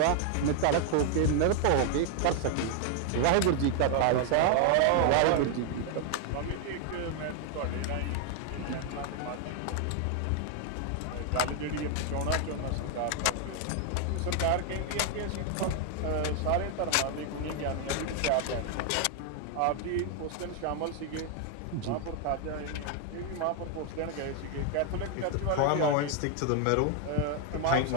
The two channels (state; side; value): different; both; correlation 0.00